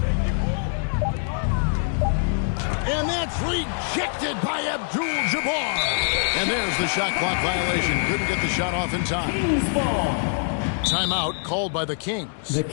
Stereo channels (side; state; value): right; silent; 60 dB below the other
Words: And that's rejected by Abdul-Jabbar. And there's the shot clock violation. Couldn't get the shot off in time. Timeout called by the Kings. The